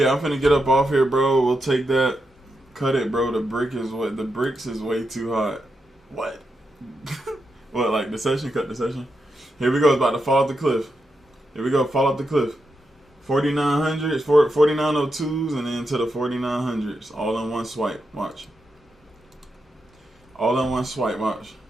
I'm finna get up off here, bro. We'll take that. Cut it, bro. The bricks is way too hot. What? What, like the session? Cut the session? Here we go. It's about to fall off the cliff. Here we go. Fall off the cliff. 4900s, 4902s, and then to the 4900s. All in one swipe. Watch. All in one swipe. Watch.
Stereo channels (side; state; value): both; normal; correlation 0.85